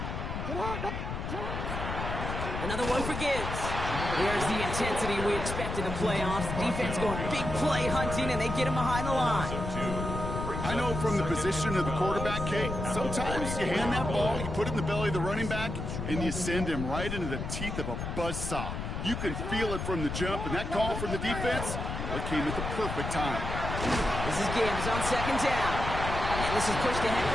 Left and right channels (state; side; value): noise; left; rumble, 4 dB below the sound